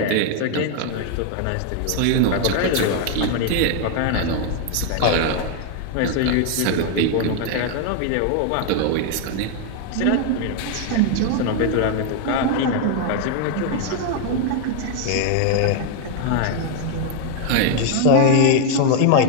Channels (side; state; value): both; different; correlation 0.00